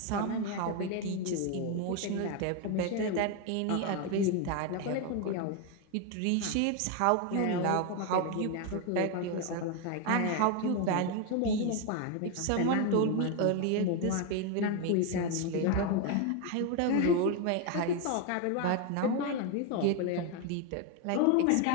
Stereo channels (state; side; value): different; both; correlation 0.02